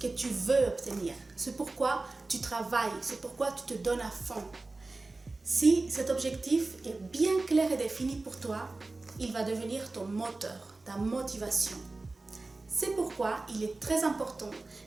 que tu veux obtenir. C'est pourquoi tu travailles, c'est pourquoi tu te donnes à fond. Si cet objectif est bien clair et défini pour toi, il va devenir ton moteur, ta motivation. C'est pourquoi il est très important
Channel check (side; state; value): left; quieter; 3.3 dB